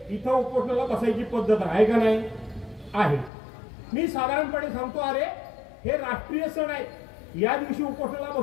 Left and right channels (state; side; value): drops out; right; at 3.3 s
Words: इथं उपोषणाला बसायची पद्धत आहे का नाही? आहे. मी साधारणपणे सांगतो, अरे हे राष्ट्रीय सण आहेत, या दिवशी उपोषणाला